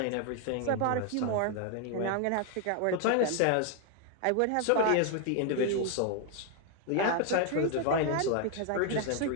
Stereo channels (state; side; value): different; both; correlation 0.00